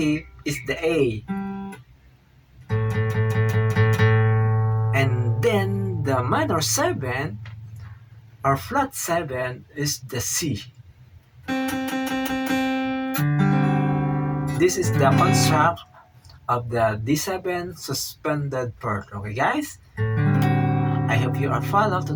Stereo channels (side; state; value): both; identical; correlation 1.00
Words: is the A, and then the minor 7 or flat 7 is the C. This is the construct of the D7 suspended chord. Okay, guys? I hope you are follow to